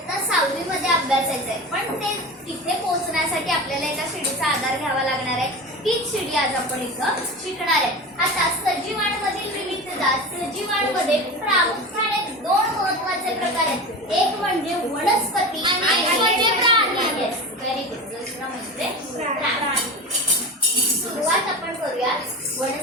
6वी मध्ये अभ्यासायचं आहे. पण ते तिथे पोहोचण्यासाठी आपल्याला एका शिडीचा आधार घ्यावा लागणार आहे. तीच शिडी आज आपण इथं शिकणार आहे. आता सजीवांमधील विविधता. सजीवांमध्ये प्रामुख्याने 2 महत्त्वाचे प्रकार आहेत. एक म्हणजे वनस्पती आणि एक म्हणजे प्राणी. Very good. दुसरा म्हणजे प्राणी. सुरुवात आपण करूया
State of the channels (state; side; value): normal; both; correlation 0.28